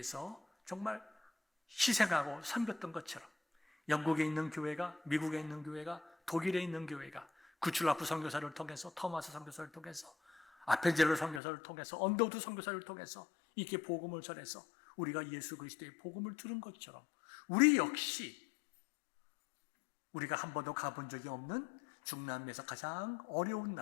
정말 희생하고 섬겼던 것처럼 영국에 있는 교회가, 미국에 있는 교회가, 독일에 있는 교회가 구출라프 선교사를 통해서, 토마스 선교사를 통해서, 아펜젤로 선교사를 통해서, 언더우드 선교사를 통해서 이렇게 복음을 전해서 우리가 예수 그리스도의 복음을 들은 것처럼 우리 역시 우리가 한 번도 가본 적이 없는 중남미에서 가장 어려운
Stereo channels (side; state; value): right; drops out; at 11.4 s